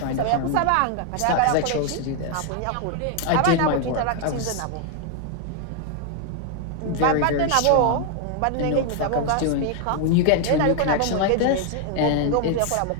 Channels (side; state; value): both; different; correlation 0.00